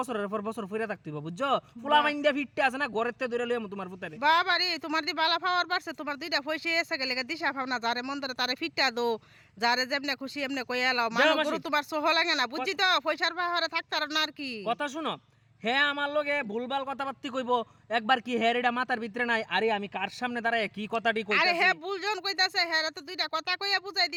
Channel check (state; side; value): identical; both; correlation 1.00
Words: পর বছর ফিরে থাকতে হবে, বুঝছো? ফুলা মাইন্ডা ফিটতে আছে না, ঘরেতে ধরে লইয়াম তোমার পুতারে। বাবা রে, তোমার দি বালা পাওয়ার পারছে, তোমার দুইটা পয়সা এসে গেলে দিশা পাও না, যারে মন ধরে তারে ফিটটা দো, যারে যেমনে খুশি এমনে কই এলাও। মানুষ গরু তোমার সহ লাগে না, বুঝছি তো? পয়সার পাহাড়ে থাকতে আর না আর কি। কথা শুনো, হ্যাঁ আমার লগে ভুলভাল কথাবার্তি কইবো, একবার কি হ্যাঁ এটা মাথার ভিতরে নাই? আরে আমি কার সামনে দাঁড়ায় কি কথাটি কইতাছি? আরে হ্যাঁ বুলজন কইতাছে, হ্যাঁ তো দুইটা কথা কইয়া বুঝাই